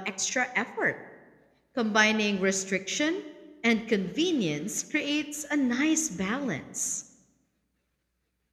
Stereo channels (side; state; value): both; identical; correlation 1.00